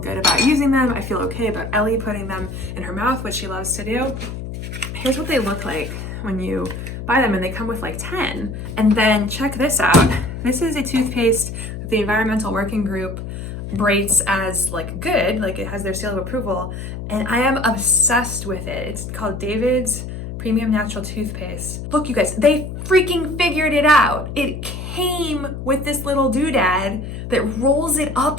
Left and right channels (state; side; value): noise; left; hum, 8 dB below the sound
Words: about using them. I feel okay about Ellie putting them in her mouth, which she loves to do. Here's what they look like when you buy them, and they come with like 10. And then check this out. This is a toothpaste that the Environmental Working Group rates as like good, like it has their seal of approval, and I am obsessed with it. It's called David's premium natural toothpaste. Look, you guys, they freaking figured it out. It came with this little doodad that rolls it